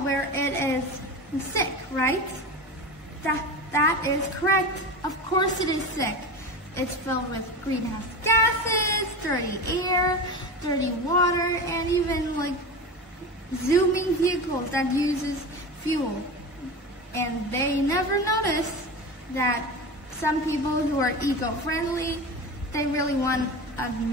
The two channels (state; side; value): normal; both; correlation 0.27